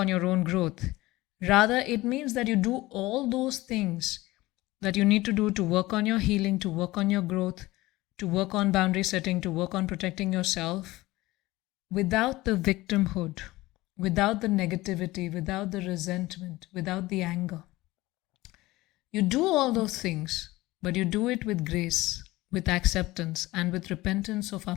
your own growth. Rather, it means that you do all those things that you need to do to work on your healing, to work on your growth, to work on boundary setting, to work on protecting yourself, without the victimhood, without the negativity, without the resentment, without the anger. You do all those things, but you do it with grace, with acceptance, and with repentance of our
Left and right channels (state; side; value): quieter; right; 18.9 dB